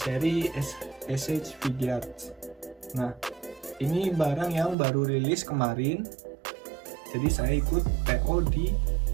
SH Figuarts. Nah, ini barang yang baru rilis kemarin. Jadi saya ikut PO di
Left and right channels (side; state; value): left; drops out; at 4.8 s